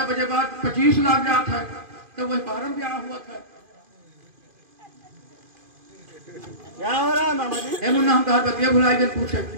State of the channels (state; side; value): late; left; 2.5 ms